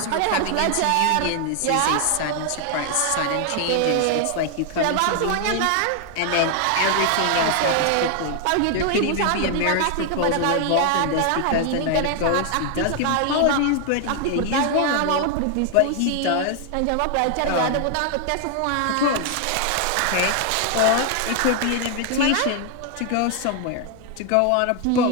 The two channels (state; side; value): different; both; correlation 0.00